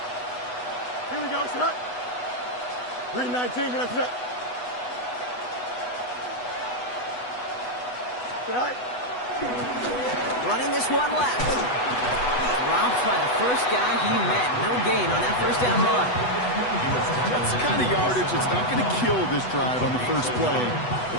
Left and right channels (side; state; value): right; late; 8.1 ms